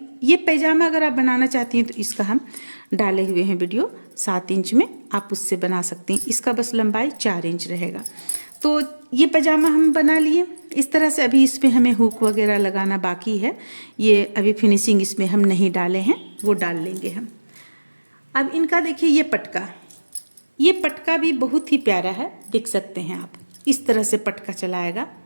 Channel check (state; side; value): inverted; both; correlation -1.00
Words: ये पैजामा अगर आप बनाना चाहती हैं तो इसका हम डाले हुए हैं वीडियो 7 इंच में, आप उससे बना सकते हैं। इसका बस लंबाई 4 इंच रहेगा। तो ये पैजामा हम बना लिए इस तरह से। अभी इस पर हमें हुक वगैरह लगाना बाकी है, ये अभी फिनिशिंग इसमें हम नहीं डाले हैं, वो डाल लेंगे हम। अब इनका देखिए ये पटका भी बहुत ही प्यारा है, देख सकते हैं आप, इस तरह से पटका चलाएगा।